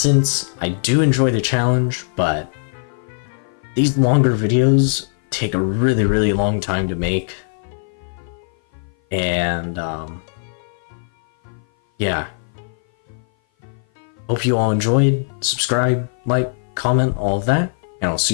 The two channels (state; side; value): silent; right; 56 dB below the other